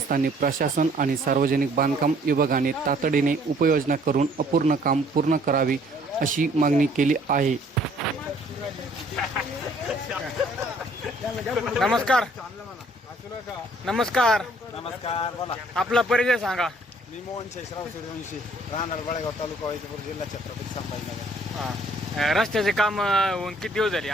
प्रशासन आणि सार्वजनिक बांधकाम विभागाने तातडीने उपाययोजना करून अपूर्ण काम पूर्ण करावी अशी मागणी केली आहे. नमस्कार. नमस्कार. नमस्कार. बोला. आपला परिचय सांगा. मी मोहन शेषराव सूर्यवंशी, राहणार बळेगाव तालुका वैजापूर जिल्हा छत्रपती संभाजीनगर. रस्त्याचे काम होऊन किती दिवस झाले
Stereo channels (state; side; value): normal; both; correlation 0.60